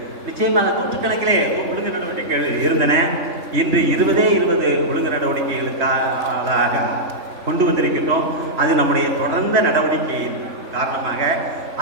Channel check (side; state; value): left; late; 3.5 ms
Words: நிச்சயமாக நூற்றுக்கணக்கிலே ஒழுங்கு நடவடிக்கைகள் இருந்தன. இன்று 20 ஒழுங்கு நடவடிக்கைகளுக்காக கொண்டு வந்திருக்கின்றோம். அது நம்முடைய தொடர்ந்த நடவடிக்கையின் காரணமாக